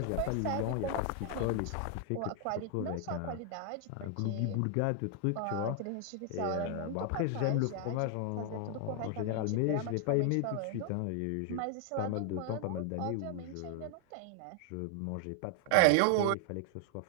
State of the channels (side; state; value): both; different; correlation 0.00